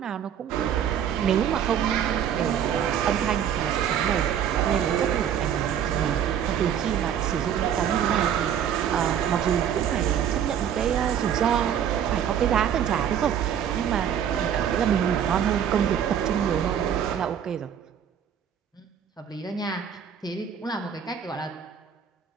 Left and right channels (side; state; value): left; quieter; 8.9 dB